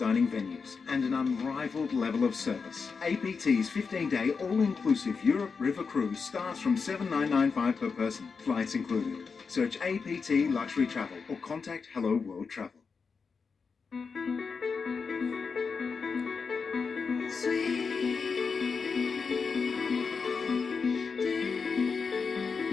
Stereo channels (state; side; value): quieter; right; 5.2 dB